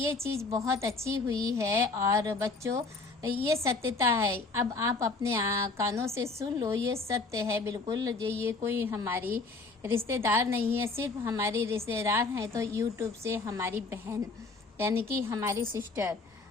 चीज़ बहुत अच्छी हुई है। और बच्चों ये सत्यता है, अब आप अपने कानों से सुन लो, ये सत्य है बिल्कुल। ये कोई हमारी रिश्तेदार नहीं है, सिर्फ हमारी रिश्तेदार हैं तो यूट्यूब से हमारी बहन, यानी कि हमारी सिस्टर,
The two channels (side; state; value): right; quieter; 3.8 dB